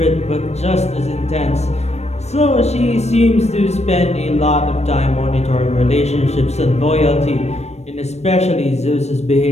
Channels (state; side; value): late; right; 0.31 ms